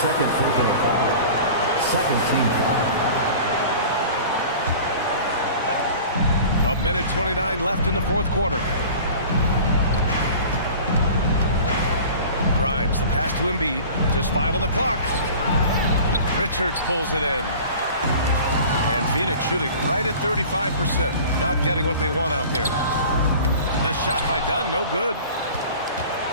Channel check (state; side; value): inverted; both; correlation -0.41